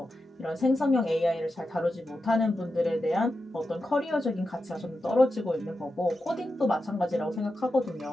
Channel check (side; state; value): both; normal; correlation 0.90